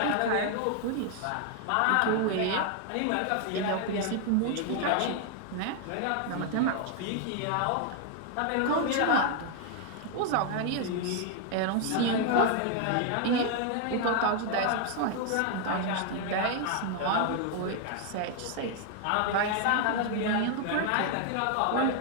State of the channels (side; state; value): both; different; correlation 0.00